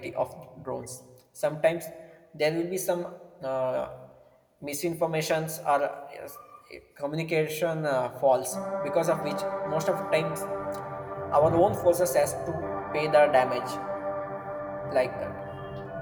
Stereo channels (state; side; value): identical; both; correlation 1.00